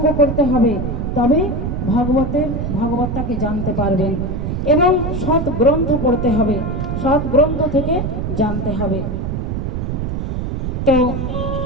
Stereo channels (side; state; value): right; noise; rumble, 2 dB below the sound